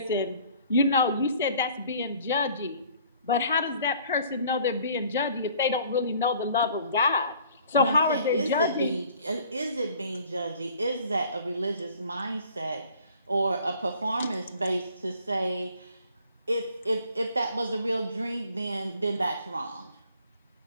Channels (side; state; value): both; inverted; correlation -0.54